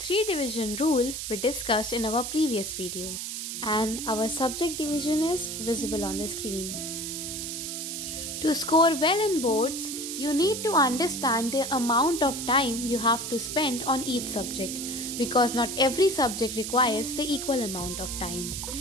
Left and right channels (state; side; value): noise; right; hiss, 5 dB below the sound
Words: division rule we discussed in our previous video. And our subject division is visible on the screen. To score well in boards, you need to understand the amount of time you have to spend on each subject because not every subject requires the equal amount of time.